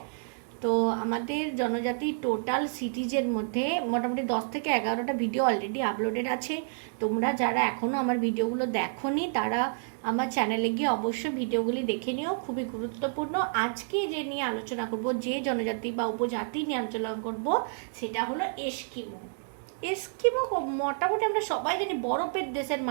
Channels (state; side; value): silent; left; digital silence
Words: তো আমাদের জনজাতি টোটাল সিটিজের মধ্যে মোটামুটি 10 থেকে 11টা ভিডিও অলরেডি আপলোডেড আছে। তোমরা যারা এখনও আমার ভিডিওগুলো দেখোনি তারা আমার চ্যানেলে গিয়ে অবশ্যই ভিডিওগুলি দেখে নিও, খুবই গুরুত্বপূর্ণ। আজকে যে নিয়ে আলোচনা করব, যে জনজাতি বা উপজাতি নিয়ে আলোচনা করব, সেটা হলো এস্কিমো। এস্কিমো মোটামুটি আমরা সবাই জানি বরফের দেশের